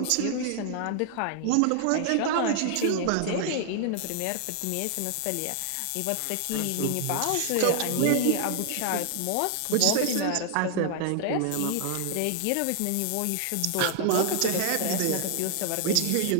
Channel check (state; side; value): different; both; correlation 0.00